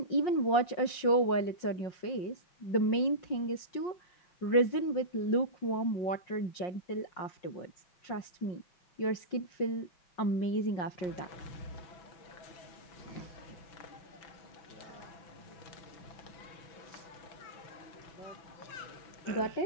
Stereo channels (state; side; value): late; right; 5.6 ms